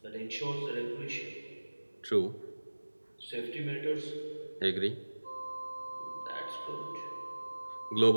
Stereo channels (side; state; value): both; inverted; correlation -1.00